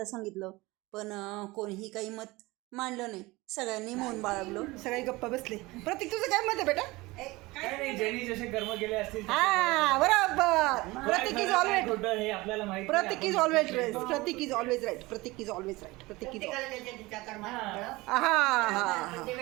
सांगितलं, पण कोणीही काही मत मांडलं नाही. सगळ्यांनी मौन बाळगलं, सगळे गप्पा बसले. प्रतीक, तुझं काय मत आहे बेटा? काय नाही, ज्यांनी जसे कर्म केले असतील हा, बरोबर. प्रतीक इज ऑलवेज हे आपल्याला माहिती. Prateek is always right. Prateek is always right. Prateek is always right. Prateek is हा हा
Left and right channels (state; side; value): quieter; left; 21.5 dB